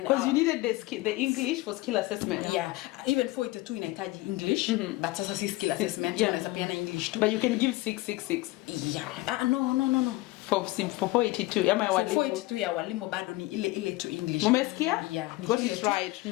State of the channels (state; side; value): quieter; right; 19.9 dB